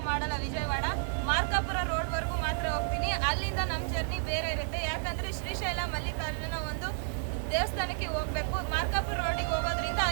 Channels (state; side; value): silent; left; 57 dB below the other